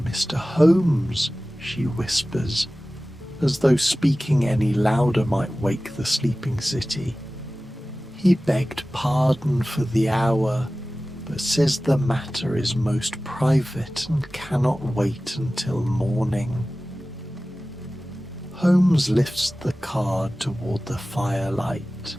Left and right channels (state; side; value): normal; both; correlation 0.97